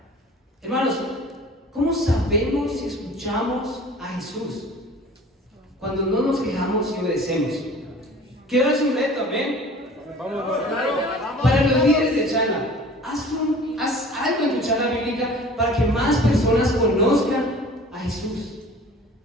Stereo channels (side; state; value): both; normal; correlation 0.45